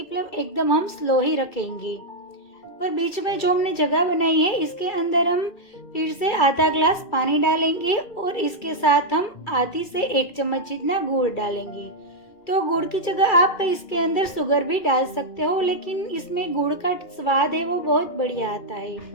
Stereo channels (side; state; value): right; late; 2.3 ms